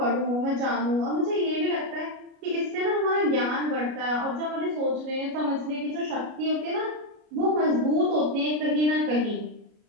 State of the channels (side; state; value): left; late; 33 ms